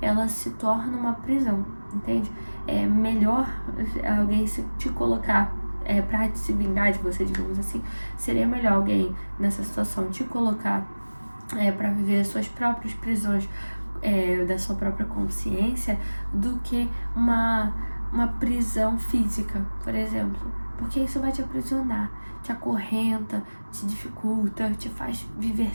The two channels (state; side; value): inverted; both; correlation -1.00